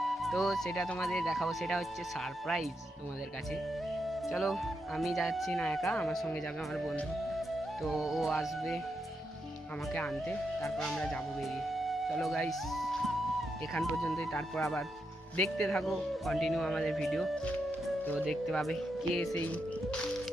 তো সেটা তোমাদের দেখাবো। সেটা হচ্ছে সারপ্রাইজ তোমাদের কাছে। চলো, আমি যাচ্ছি না একা, আমার সঙ্গে যাবে আমার বন্ধু। তো ও আসবে আমাকে আনতে, তারপর আমরা যাবো বেরিয়ে। চলো গাইস, এখান পর্যন্তই, তারপর আবার দেখতে থাকো কন্টিনিউ আমাদের ভিডিও। তো দেখতে পাবে কে সেই,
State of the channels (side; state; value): both; normal; correlation 0.83